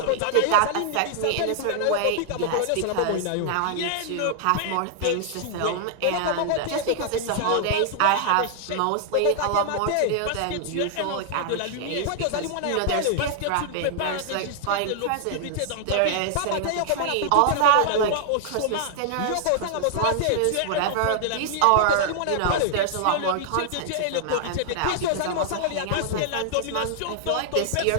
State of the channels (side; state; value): both; different; correlation -0.01